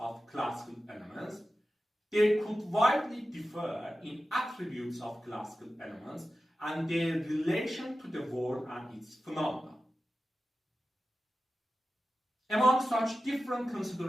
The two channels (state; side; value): normal; both; correlation 0.93